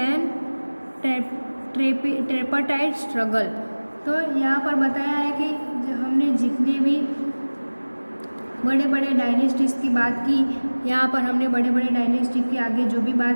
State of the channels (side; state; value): both; inverted; correlation -1.00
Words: an tripartite struggle. तो यहाँ पर बताया है कि हमने जितने भी बड़े बड़े डायनेस्टीज़ की बात की, यहाँ पर हमने बड़े बड़े डायनेस्टी के आगे जो भी